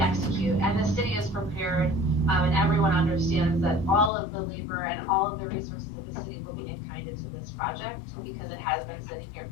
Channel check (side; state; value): right; drops out; at 4.1 s